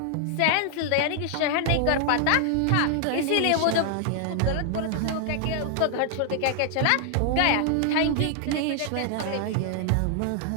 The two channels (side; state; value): both; different; correlation 0.00